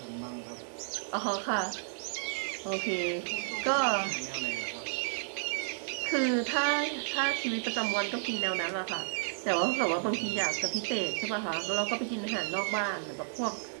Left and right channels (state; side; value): silent; left; digital silence